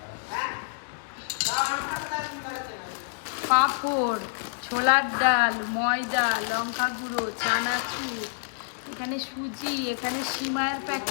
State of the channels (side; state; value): right; silent; digital silence